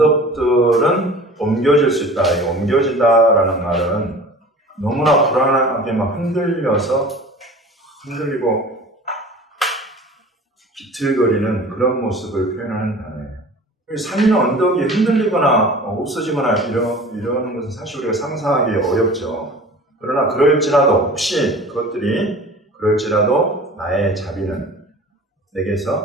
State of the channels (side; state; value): both; normal; correlation 0.41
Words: 옮겨질 수 있다. 이 옮겨진다라는 말은 너무나 불안하게 막 흔들리고 비틀거리는 그런 모습을 표현하는 단어예요. 산이나 언덕이 흔들리거나 없어지거나 이러는 것은 사실 우리가 상상하기 어렵죠. 그러나 혹시 그것들이 그럴지라도 나의 자비는